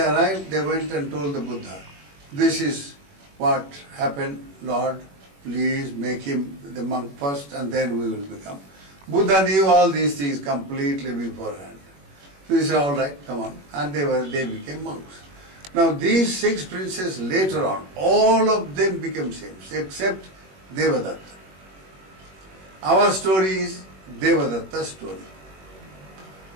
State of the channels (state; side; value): late; left; 21 ms